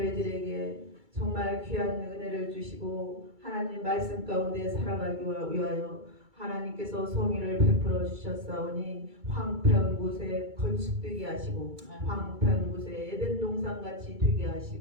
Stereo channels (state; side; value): late; left; 2.3 ms